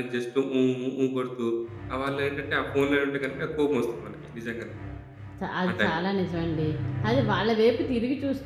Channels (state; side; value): identical; both; correlation 1.00